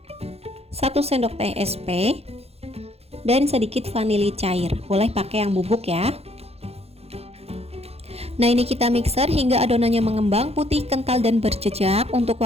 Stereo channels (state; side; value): late; left; 0.29 ms